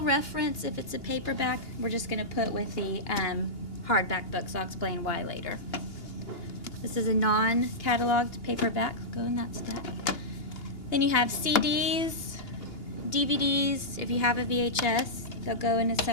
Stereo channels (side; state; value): right; late; 2.8 ms